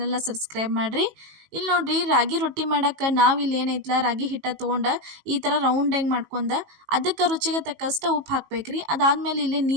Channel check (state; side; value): late; left; 18 ms